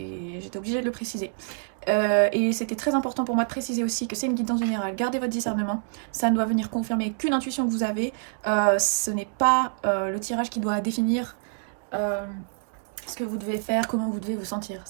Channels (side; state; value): left; silent; digital silence